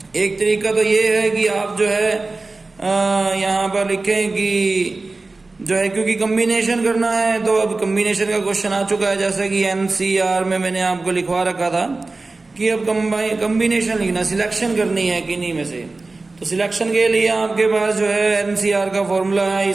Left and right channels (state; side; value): quieter; left; 3.5 dB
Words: एक तरीका तो ये है कि आप जो है यहाँ पर लिखें कि जो है, क्योंकि कम्बिनेशन करना है तो अब कम्बिनेशन का क्वेश्चन आ चुका है, जैसा कि एनसीआर में मैंने आपको लिखवा रखा था कि अब कम्बिनेशन लिखना, सिलेक्शन करनी है किन्हीं में से. तो सिलेक्शन के लिए आपके पास जो है एनसीआर का फॉर्मूला है.